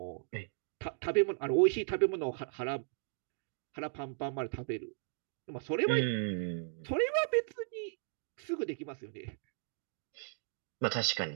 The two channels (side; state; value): left; silent; digital silence